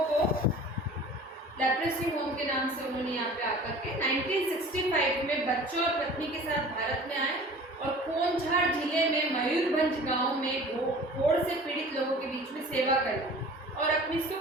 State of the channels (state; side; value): normal; both; correlation 0.44